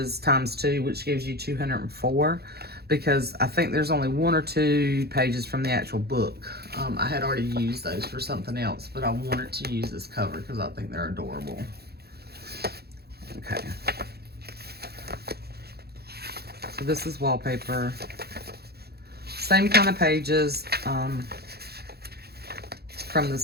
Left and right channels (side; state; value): left; late; 0.46 ms